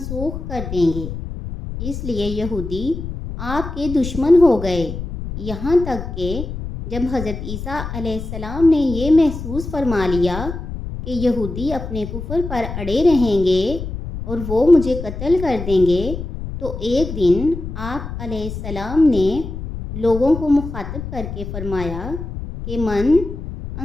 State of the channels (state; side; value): noise; left; rumble, 8 dB below the sound